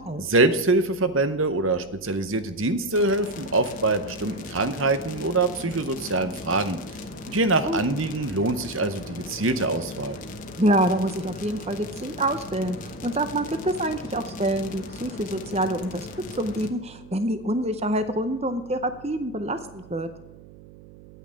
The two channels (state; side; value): noise; right; hum, 20 dB below the sound